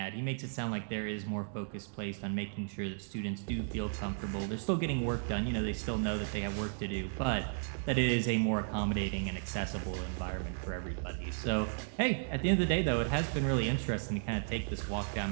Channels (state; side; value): silent; left; digital silence